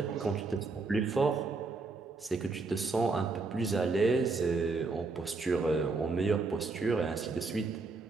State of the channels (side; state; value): left; quieter; 4.0 dB